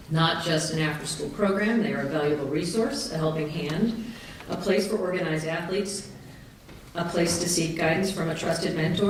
Not just an after-school program, they are a valuable resource, a helping hand, a place for organized athletes, a place to seek guidance from a trusted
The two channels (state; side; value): identical; both; correlation 1.00